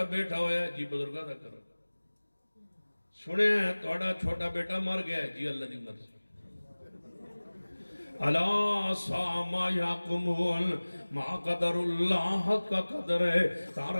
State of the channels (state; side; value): inverted; both; correlation -1.00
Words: بیٹا ہویا ہے جی بزرگاں دا کرم سنے ہیں توڑا چھوٹا بیٹا مر گیا ہے جی اللہ دی مرضی اللہ ساما یاکمون ما قدر اللہ حق کا قدر ہے